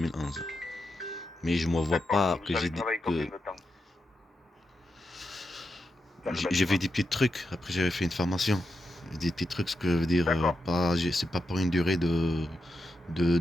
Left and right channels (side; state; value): both; normal; correlation 0.86